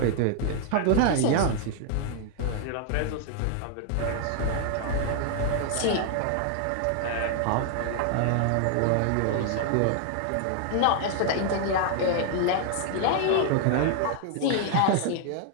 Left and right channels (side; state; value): both; different; correlation 0.00